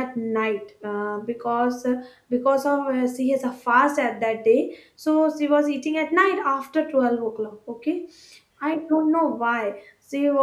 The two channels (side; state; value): both; identical; correlation 1.00